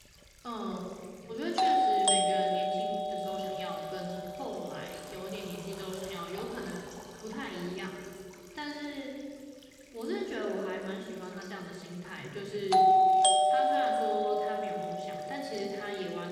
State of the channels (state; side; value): identical; both; correlation 1.00